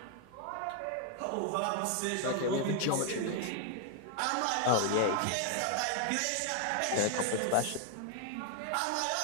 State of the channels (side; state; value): both; different; correlation 0.00